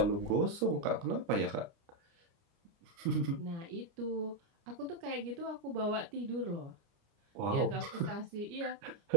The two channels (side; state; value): left; late; 29 ms